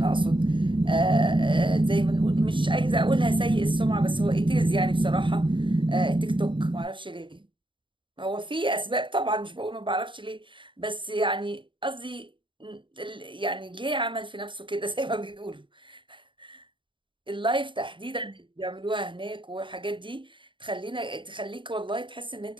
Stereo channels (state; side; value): late; left; 0.24 ms